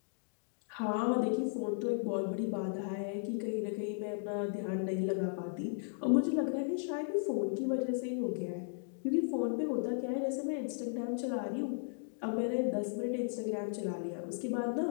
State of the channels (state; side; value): silent; right; digital silence